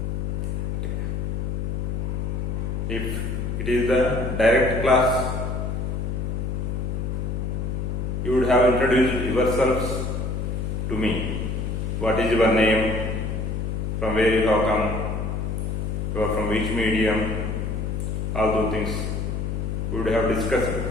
If it is the direct class, you would have introduced yourselves to me. What is your name? From where you have come? You are from which medium? All those things we would have discussed.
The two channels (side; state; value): left; noise; hum, 1 dB below the sound